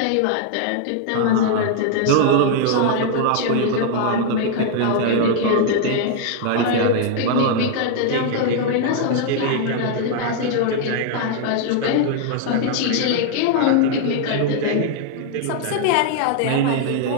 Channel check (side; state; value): both; different; correlation 0.00